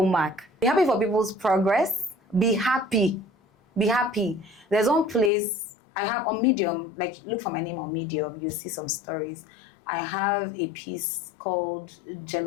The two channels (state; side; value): drops out; right; at 5.3 s